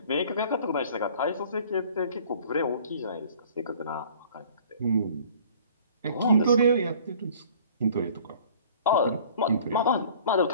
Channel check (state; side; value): inverted; both; correlation -0.51